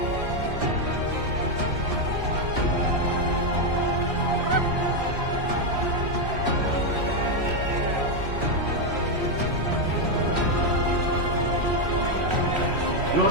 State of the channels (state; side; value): late; left; 3.1 ms